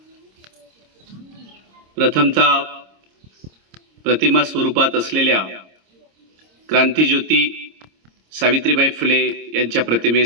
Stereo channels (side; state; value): left; late; 26 ms